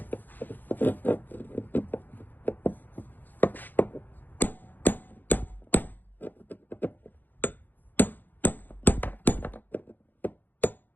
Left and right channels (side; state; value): right; late; 0.088 ms